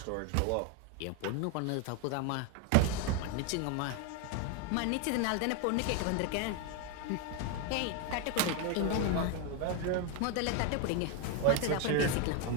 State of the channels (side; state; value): both; different; correlation 0.01